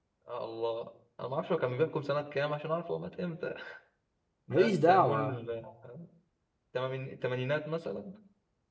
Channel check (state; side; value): identical; both; correlation 1.00